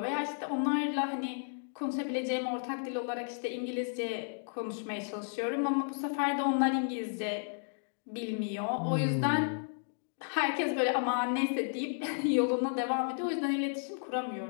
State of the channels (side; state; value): right; silent; digital silence